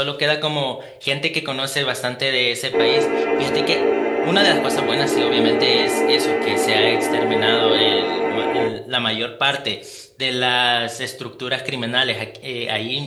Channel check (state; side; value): identical; both; correlation 1.00